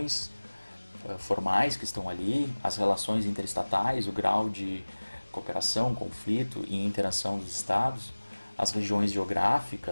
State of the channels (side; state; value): both; inverted; correlation -1.00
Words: formais que estão ali, as relações interestatais, o grau de cooperação, conflito e interação dos estados, as regiões